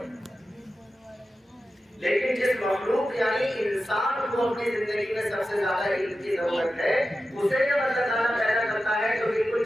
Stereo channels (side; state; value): both; normal; correlation 0.92